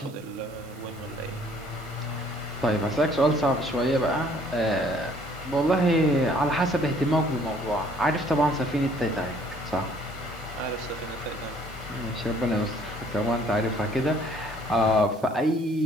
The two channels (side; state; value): right; noise; hiss, 24 dB below the sound